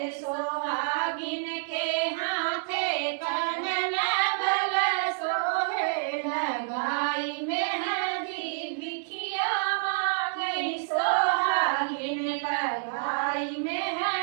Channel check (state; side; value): silent; left; digital silence